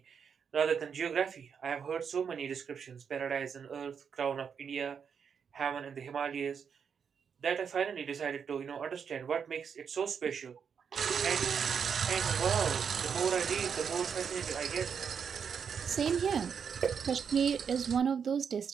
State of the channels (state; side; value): quieter; left; 6.9 dB